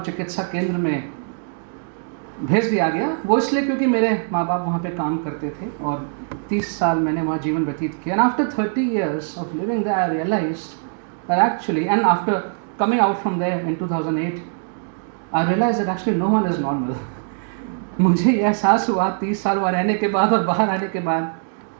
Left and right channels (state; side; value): silent; left; digital silence